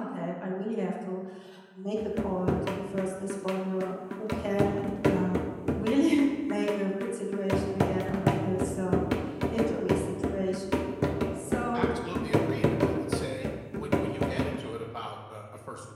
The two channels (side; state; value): both; identical; correlation 1.00